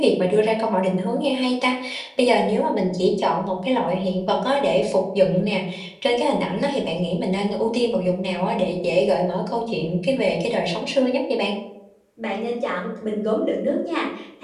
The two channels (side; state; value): both; identical; correlation 1.00